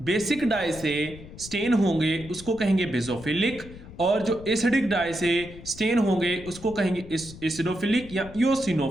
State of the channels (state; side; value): noise; left; rumble, 16 dB below the sound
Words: बेसिक डाई से स्टेन होंगे उसको कहेंगे बेसोफिलिक, और जो एसिडिक डाई से स्टेन होंगे उसको कहेंगे एसिडोफिलिक या